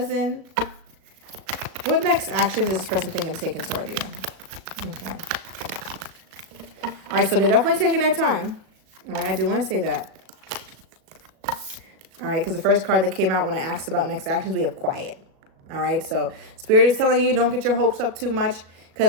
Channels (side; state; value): left; late; 37 ms